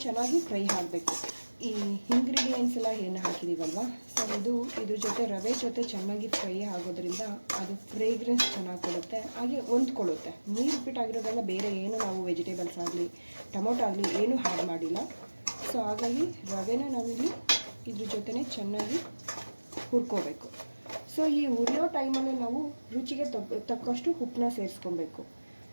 ಚೆನ್ನಾಗಿ ಫ್ರೈ ಆಗಬೇಕು. ಈ ಇಂಗ್ರೀಡಿಯೆಂಟ್ಸ್ ಎಲ್ಲ ಏನು ಹಾಕಿದ್ದೀವಲ್ವ, ಸೊ ಇದ್ರ ಜೊತೆ ರವೆ ಜೊತೆ ಚೆನ್ನಾಗಿ ಫ್ರೈ ಆಗೋದ್ರಿಂದ ಅದು ಫ್ರೇಗ್ರೆನ್ಸ್ ಚೆನ್ನಾಗಿ ಕೊಡುತ್ತೆ, ಹಾಗೆ ಹೊಂದ್ಕೊಳ್ಳುತ್ತೆ. ನೀರುಪ್ಪಿಟ್ಟಾಗಿರೋದ್ರಿಂದ ಬೇರೆ ಏನು ನಾವು ವೆಜಿಟೇಬಲ್ಸ್ ಆಗಲಿ ಟೊಮೊಟೊ ಆಗಲಿ ಏನೂ ಆ್ಯಡ್ ಮಾಡಿಲ್ಲ. ಸೊ ಹಾಗಾಗಿ ರವೆನ ನಾವಿಲ್ಲಿ ಇದ್ರ ಜೊತೆನೇ ಚೆನ್ನಾಗಿ ಹುರ್ಕೋಬೇಕು. ಸೊ ಈ ಹುರಿಯೋ ಟೈಮಲ್ಲಿ ನಾವು ರುಚಿಗೆ ತಕ್ಕಷ್ಟು ಉಪ್ಪನ್ನ ಸೇರಿಸ್ಕೊಬೇಕು.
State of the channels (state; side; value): inverted; both; correlation -1.00